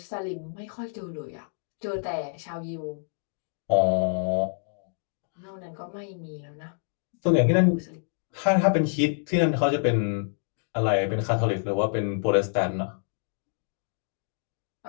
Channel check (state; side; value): silent; right; digital silence